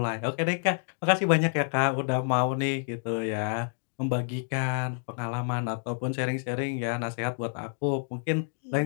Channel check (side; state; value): right; silent; 59 dB below the other